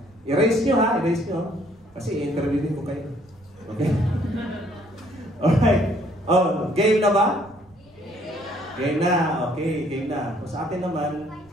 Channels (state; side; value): noise; right; rumble, 29 dB below the sound